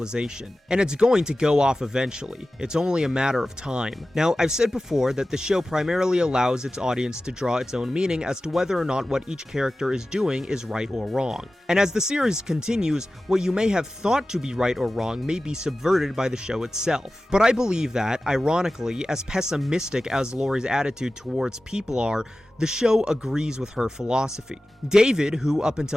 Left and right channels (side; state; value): both; normal; correlation 0.95